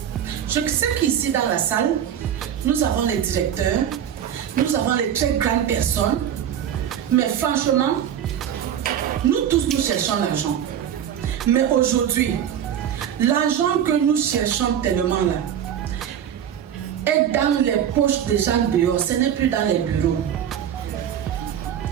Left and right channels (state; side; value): quieter; left; 9.5 dB